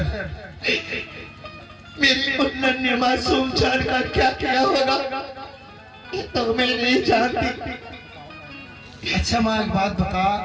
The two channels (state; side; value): identical; both; correlation 1.00